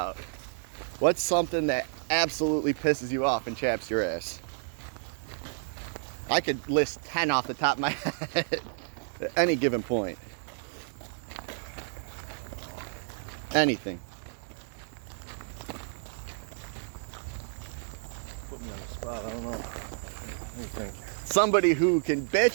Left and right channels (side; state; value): left; silent; digital silence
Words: What's something that absolutely pisses you off and chaps your ass? I could list 10 off the top of my head at any given point. Anything. Put me on the spot, I don't know. What do you think? Somebody who can